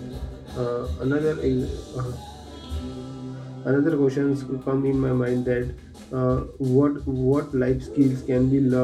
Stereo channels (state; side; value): identical; both; correlation 1.00